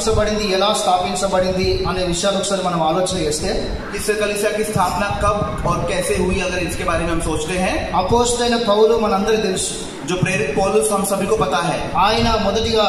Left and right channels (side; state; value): both; identical; correlation 1.00